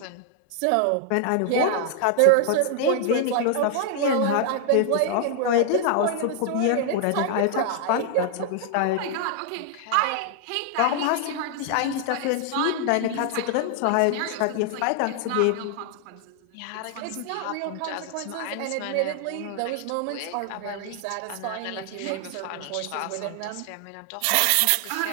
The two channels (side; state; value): both; different; correlation 0.00